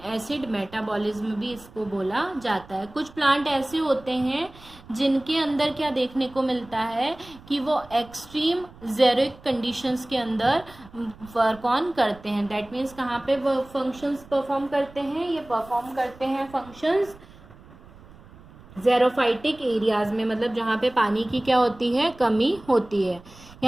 एसिड मेटाबॉलिज्म भी इसको बोला जाता है। कुछ प्लांट ऐसे होते हैं जिनके अंदर क्या देखने को मिलता है कि वो एक्सट्रीम जेरिक कंडीशंस के अंदर वर्क ऑन करते हैं। दैट मीन्स कहाँ पे वो फंक्शंस परफॉर्म करते हैं? ये परफॉर्म करते हैं फंक्शंस जेरोफाइटिक एरियाज में, मतलब जहाँ पे पानी की क्या होती है? कमी होती है।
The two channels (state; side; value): noise; right; rumble, 22 dB below the sound